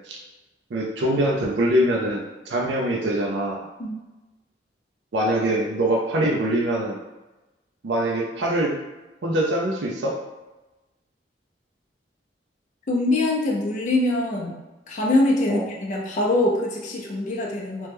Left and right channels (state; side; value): normal; both; correlation 0.49